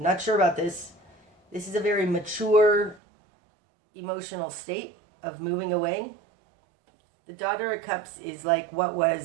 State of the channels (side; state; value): left; drops out; at 3.0 s